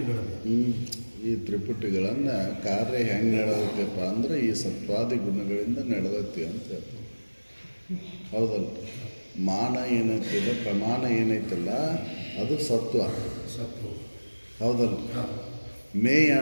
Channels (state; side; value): inverted; both; correlation -1.00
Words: ಈ ತ್ರಿಪುಟಿಗಳನ್ನು ಕಾರ್ಯ ಹೆಂಗೆ ನಡೆದೈತಪ್ಪ ಅಂದ್ರೆ ಈ ಸತ್ವಾದಿ ಗುಣಗಳಿಂದ ನಡೆದೈತಿ ಅಂತ ಹೇಳ್ತಾರೆ. ಹೌದಲ್ಲ? ಮಾನ ಏನೈತಿಲ್ಲ, ಪ್ರಮಾಣ ಏನೈತಿಲ್ಲ, ಅದು ಸತ್ವ. ಹೌದಲ್ಲ? ಮೇಯ